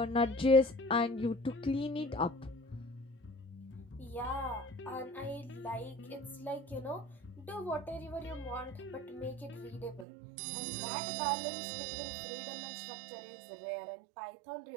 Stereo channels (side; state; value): left; drops out; at 10.1 s